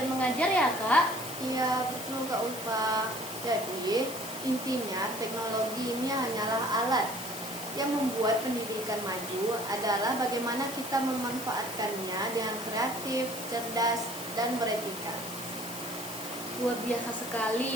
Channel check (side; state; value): left; noise; hiss, 11 dB below the sound